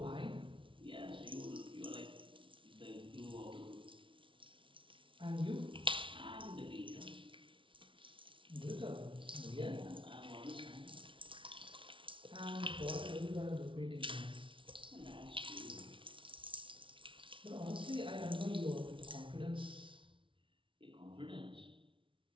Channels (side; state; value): left; late; 0.25 ms